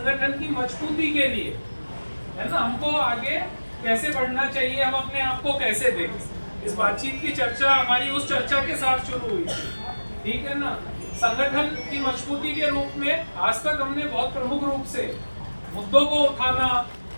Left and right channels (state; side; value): inverted; both; correlation -1.00